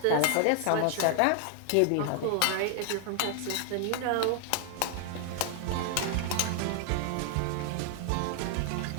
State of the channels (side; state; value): both; different; correlation 0.00